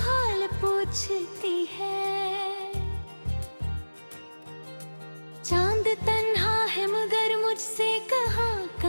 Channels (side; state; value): both; inverted; correlation -1.00